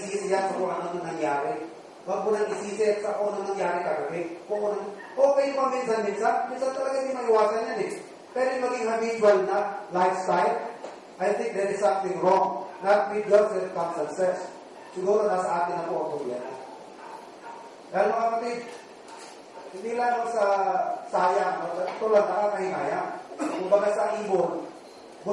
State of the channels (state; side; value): identical; both; correlation 1.00